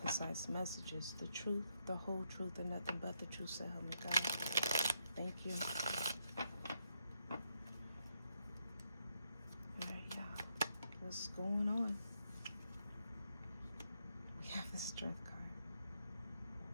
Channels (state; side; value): inverted; both; correlation -0.79